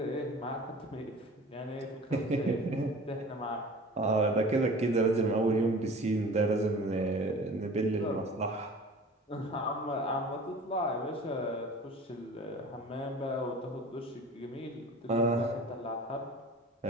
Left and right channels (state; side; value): normal; both; correlation 0.42